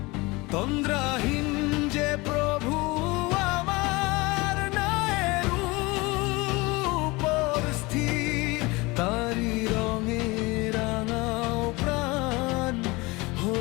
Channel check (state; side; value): quieter; right; 23.8 dB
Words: তন্দ্রাহীন যে প্রভু আমার, ন্যায়ের উপর স্থির। তারি রঙে রাঙাও প্রাণ,